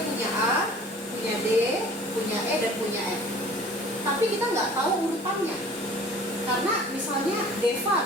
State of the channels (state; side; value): normal; both; correlation 0.47